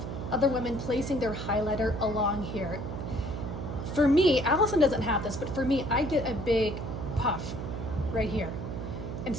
other women placing their highlighter along here. For me, Allison doesn't have this, but for me, I get a big puff right here. And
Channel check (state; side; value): noise; right; hum, 6 dB below the sound